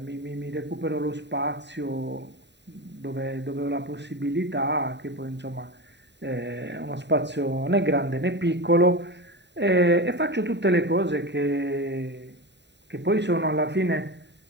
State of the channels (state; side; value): late; left; 0.51 ms